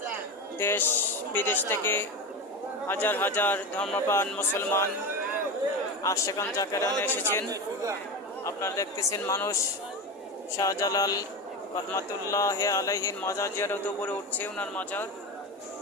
দেশ বিদেশ থেকে হাজার হাজার ধর্মপ্রাণ মুসলমান আশিকান জাকেরান এসেছেন। আপনারা দেখতেছেন মানুষ শাহজালাল রহমতুল্লাহ আলাইহির মাজার জিয়ারত উপরে উঠছে। ওনার মাজার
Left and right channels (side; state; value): both; normal; correlation 0.22